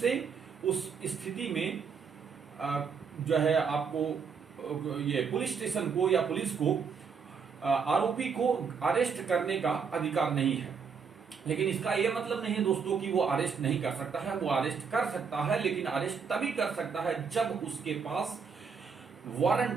उस स्थिति में जो है आपको ये पुलिस स्टेशन को या पुलिस को आरोपी को अरेस्ट करने का अधिकार नहीं है। लेकिन इसका यह मतलब नहीं है दोस्तों कि वो अरेस्ट नहीं कर सकता है, वो अरेस्ट कर सकता है, लेकिन अरेस्ट तभी कर सकता है जब उसके पास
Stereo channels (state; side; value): quieter; left; 6.0 dB